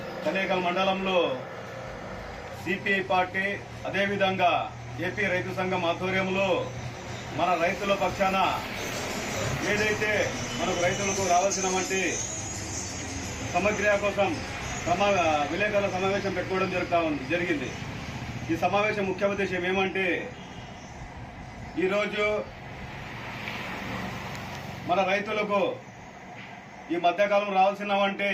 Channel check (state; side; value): identical; both; correlation 1.00